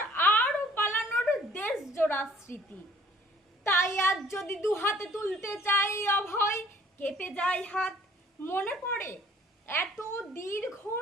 আর পালানোর দেশ জোড়া স্মৃতি। তাই আজ যদি দুহাতে তুলতে চাই অভয়, কেঁপে যায় হাত। মনে পড়ে এত দীর্ঘ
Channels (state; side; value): normal; both; correlation 0.57